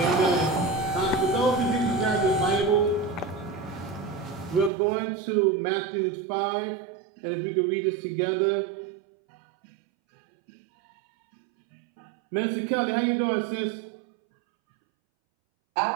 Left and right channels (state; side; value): drops out; left; at 4.7 s